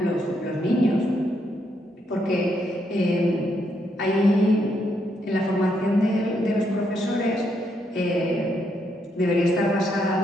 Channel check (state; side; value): normal; both; correlation 0.77